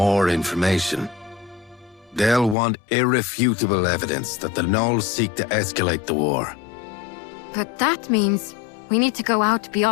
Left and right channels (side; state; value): right; drops out; at 2.6 s